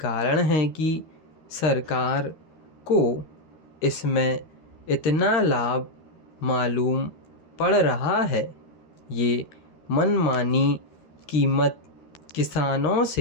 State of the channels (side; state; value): right; late; 13 ms